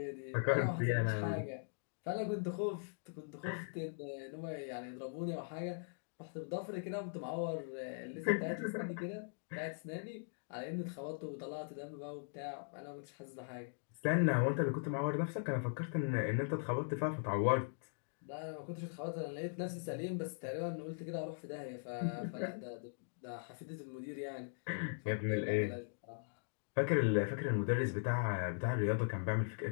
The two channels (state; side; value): silent; right; digital silence